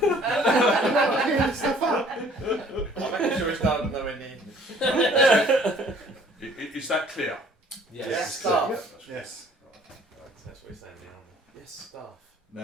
making sure it's not nowhere near. Is that clear? Yes. Staff. Yes. That's what he's saying now. Yes, staff.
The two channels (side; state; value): both; normal; correlation 0.56